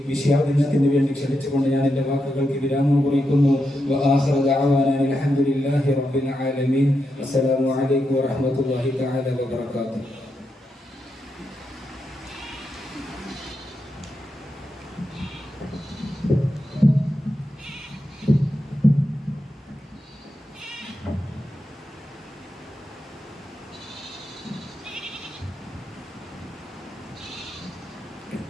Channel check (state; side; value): normal; both; correlation 0.85